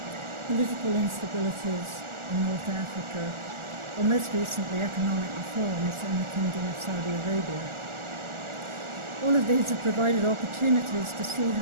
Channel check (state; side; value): late; left; 1.4 ms